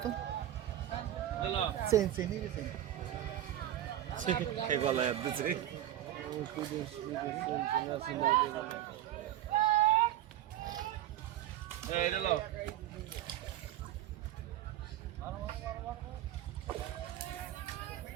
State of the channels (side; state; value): left; quieter; 12.7 dB